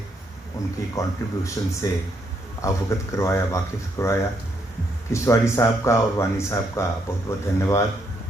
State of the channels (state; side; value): normal; both; correlation 0.75